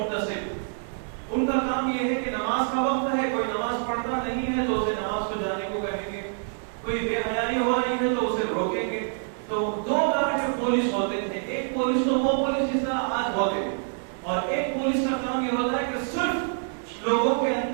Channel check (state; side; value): silent; left; 61 dB below the other